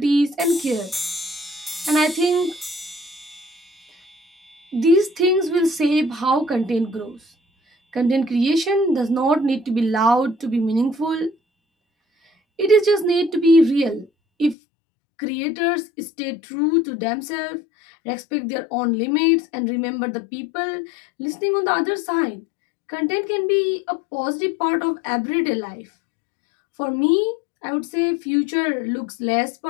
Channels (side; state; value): right; drops out; at 14.6 s